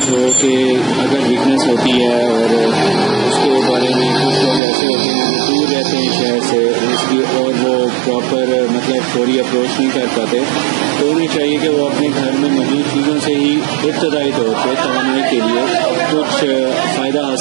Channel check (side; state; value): left; drops out; at 4.6 s